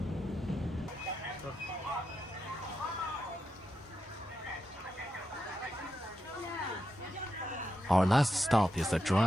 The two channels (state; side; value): normal; both; correlation 0.86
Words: Our last stop is the